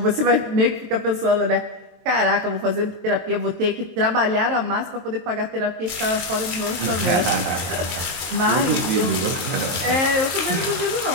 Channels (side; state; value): left; late; 22 ms